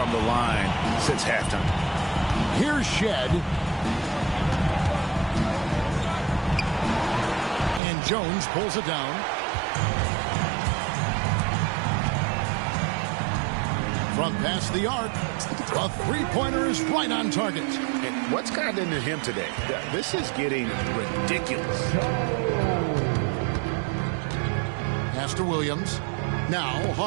the line since halftime. Here's Shed. And Jones pulls it down. From past the arc, a three-pointer is right on target. And what's gotten into him today? This is getting ridiculous. Pass to Williams. Now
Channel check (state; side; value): drops out; left; at 7.8 s